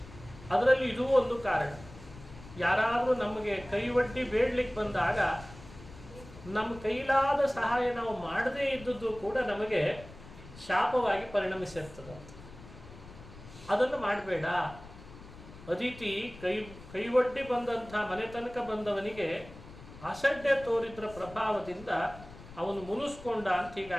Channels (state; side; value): noise; left; rumble, 18 dB below the sound